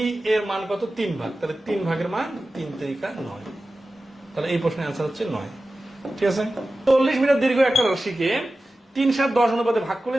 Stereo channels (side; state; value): both; normal; correlation 0.95